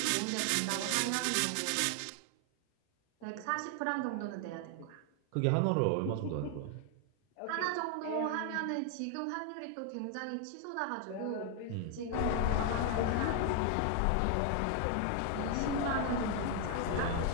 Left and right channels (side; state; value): both; different; correlation 0.00